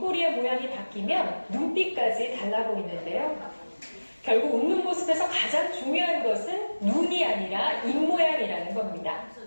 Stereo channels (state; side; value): inverted; both; correlation -1.00